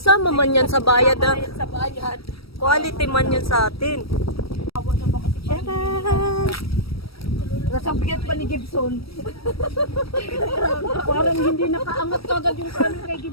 man yan sa bayad ah. Bayad sa bayad. Quality man yan sa atin. Awa na ba kasi Tcharan! Nasang bigat pa ni Gibson. Parang hindi nakaangat kagad yung camel kay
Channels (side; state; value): right; late; 0.76 ms